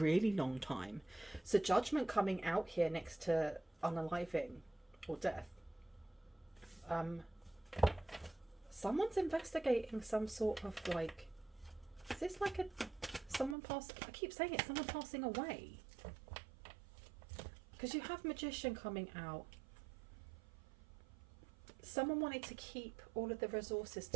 long time. So Judgment coming out here next to unaliving or death. Someone's investigating some sort of like, is this like someone I keep saying it, someone passing away. Because you have Magician coming out. Someone wanted to keep all of the resources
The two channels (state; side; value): drops out; left; at 13.6 s